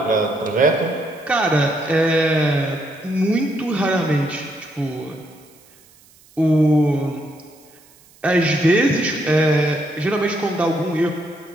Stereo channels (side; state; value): right; noise; hiss, 28 dB below the sound